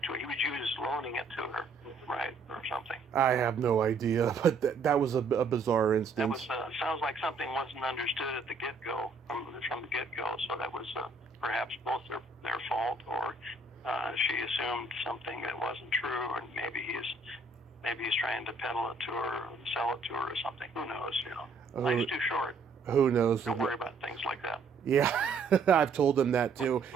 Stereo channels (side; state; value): left; quieter; 3.8 dB